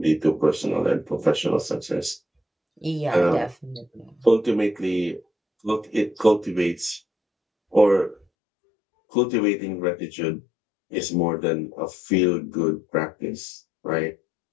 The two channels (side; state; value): right; drops out; at 8.2 s